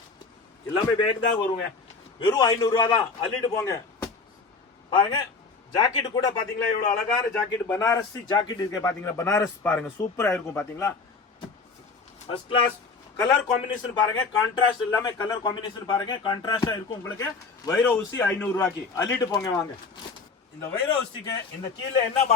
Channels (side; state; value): right; quieter; 4.4 dB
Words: எல்லாமே பேக் தான் வருங்க. வெறும் 500 ரூபா தான், அள்ளிட்டு போங்க பாருங்க. ஜாக்கெட் கூட பாத்தீங்களா எவ்வளவு அழகான ஜாக்கெட், பனாரஸ் ஜாக்கெட் இருக்கு பாத்தீங்களா. பனாரஸ் பாருங்க சூப்பரா இருக்கும் பாத்தீங்களா. ஃபர்ஸ்ட் கிளாஸ் கலர் காம்பினேஷன் பாருங்க. கான்ட்ராஸ்ட் எல்லாமே கலர் காம்பினேஷன் பாருங்க, கான்ட்ராஸ்டா இருக்கும் உங்களுக்கு. வைரோ ஊசி 500 ரூபாய்க்கு அள்ளிட்டு போங்க வாங்க. இந்த வைரோ ஊசிக்கு இந்த கீழே என்ன